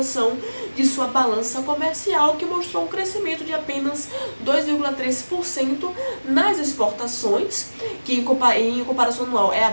de sua balança comercial, que mostrou um crescimento de apenas 2,3% nas exportações, que em comparação anual é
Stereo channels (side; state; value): both; inverted; correlation -1.00